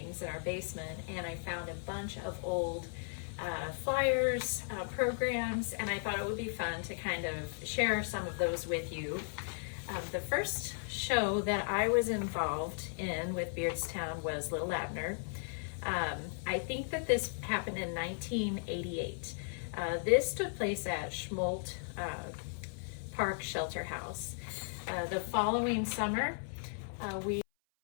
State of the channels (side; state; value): right; silent; 54 dB below the other